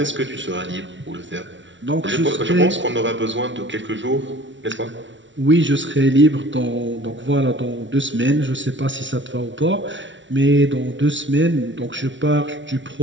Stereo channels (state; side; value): late; left; 0.55 ms